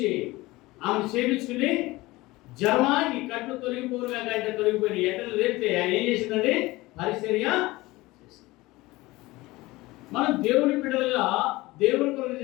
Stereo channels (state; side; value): quieter; right; 20.2 dB